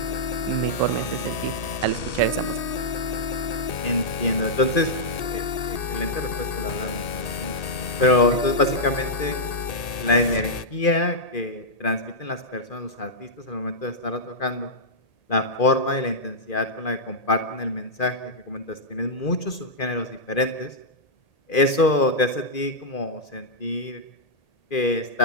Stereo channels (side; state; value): right; late; 1.8 ms